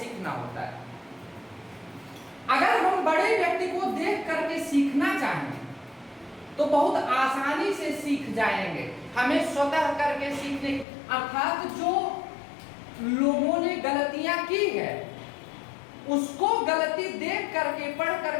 होता है। अगर हम बड़े व्यक्ति को देख करके सीखना चाहें तो बहुत आसानी से सीख जाएंगे। हमें स्वतः करके सीखने, अर्थात जो लोगों ने गलतियां की है उसको गलती देख करके, पढ़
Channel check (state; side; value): drops out; right; at 10.9 s